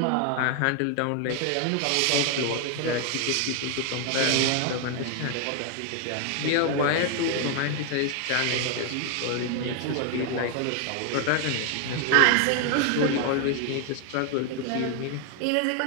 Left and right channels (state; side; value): different; both; correlation 0.00